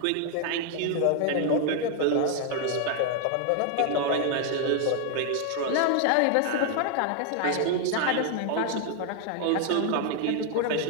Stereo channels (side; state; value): both; different; correlation 0.00